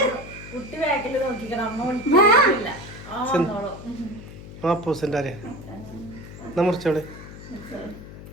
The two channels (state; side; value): noise; left; hum, 14 dB below the sound